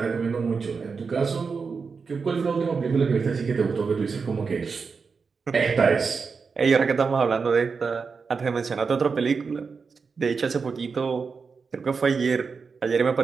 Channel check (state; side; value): quieter; left; 5.1 dB